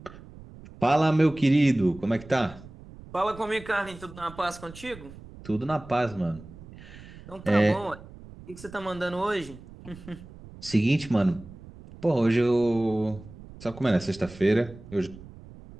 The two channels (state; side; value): noise; right; rumble, 18 dB below the sound